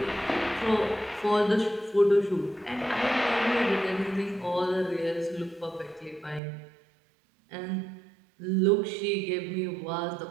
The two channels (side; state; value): left; drops out; at 6.4 s